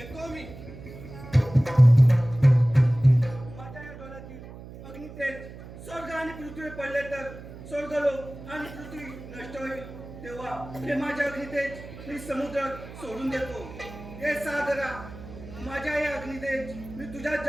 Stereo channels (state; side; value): noise; right; hum, 15 dB below the sound